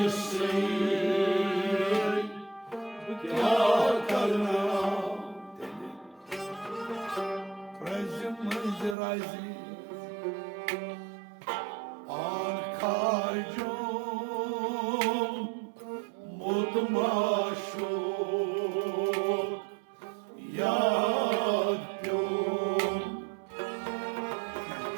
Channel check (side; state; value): left; drops out; at 9.0 s